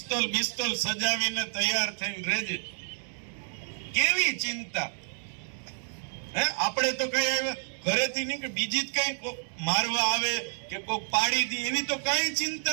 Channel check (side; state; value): left; silent; digital silence